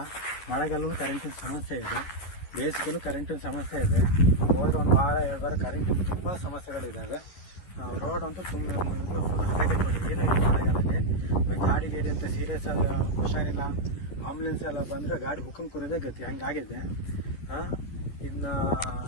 ಮಳೆಗಾಲಲ್ಲೂ ಕರೆಂಟಿನ ಸಮಸ್ಯೆ ಇದೆ, ಬೇಸಿಗೆಲ್ಲೂ ಕರೆಂಟಿನ ಸಮಸ್ಯೆ ಇದೆ. ಹೋದ್ರೆ 1 ವಾರ 2 ವಾರ ಕರೆಂಟಿನ ತುಂಬ ಸಮಸ್ಯೆಗಳಿದ್ದಾವೆ. ರೋಡ್ ಅಂತೂ ತುಂಬ ಹದಗೆಟ್ಬಿಟ್ಟು ಏನೂ ಇಲ್ಲ ಮಳೆಗಾಲದಲ್ಲಿ. ಗಾಡಿ ಅಂತ ಸೀರಿಯಸ್ ಎಲ್ಲ ಹುಷಾರಿಲ್ಲ, ಆಂಬುಲೆನ್ಸ್ ಎಲ್ಲ ಬಂದರೆ ಗಾಡಿ ಬುಕ್ಕಂಗೆ ಕುರಿದೇ ಗತಿ ಹಂಗಾಗಿದೆ. ಇನ್ನು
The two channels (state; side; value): late; right; 11 ms